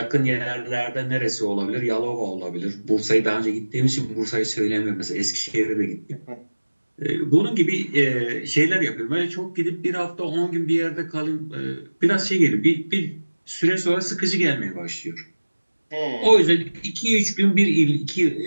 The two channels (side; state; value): both; inverted; correlation -1.00